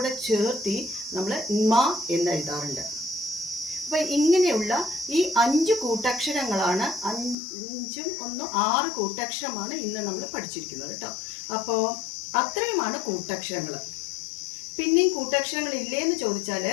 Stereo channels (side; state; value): right; drops out; at 7.4 s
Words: ചേർത്തി നമ്മൾ ന്മ എന്ന് എഴുതാറുണ്ട്. അപ്പോൾ ഇങ്ങനെയുള്ള ഈ 5 കൂട്ടക്ഷരങ്ങളാണ്, 5ഉം 1 6 കൂട്ടക്ഷരമാണ് ഇന്ന് നമ്മൾ പഠിച്ചിരിക്കുന്നത് കേട്ടോ. അപ്പോൾ അത്രയുമാണ് കൂട്ടക്ഷരങ്ങൾ. പിന്നെയും കൂട്ടക്ഷരങ്ങൾ ഇല്ലേന്ന് ചോദിച്ചാൽ